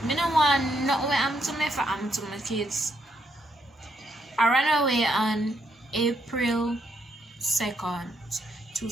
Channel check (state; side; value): normal; both; correlation 0.76